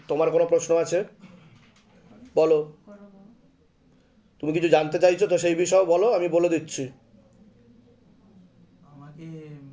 তোমার কোনো প্রশ্ন আছে বলো, করবো। তুমি কিছু জানতে চাইছো তো সেই বিষয়ে বলো, আমি বলে দিচ্ছি। আমাকে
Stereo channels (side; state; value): both; identical; correlation 1.00